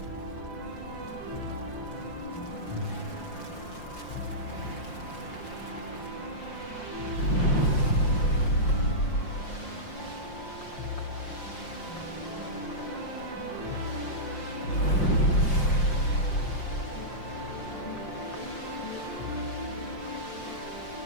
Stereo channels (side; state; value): right; late; 5.7 ms